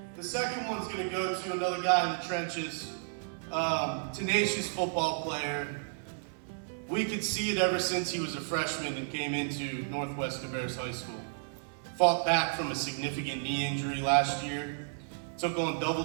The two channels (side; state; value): left; silent; 56 dB below the other